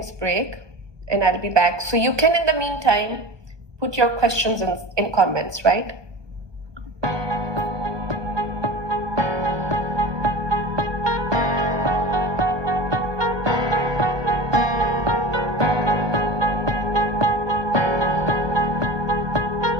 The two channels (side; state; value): left; late; 1.2 ms